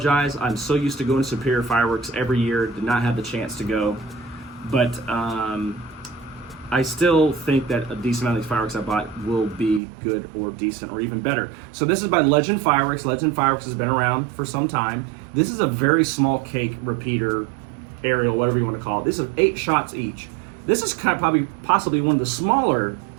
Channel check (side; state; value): left; drops out; at 9.8 s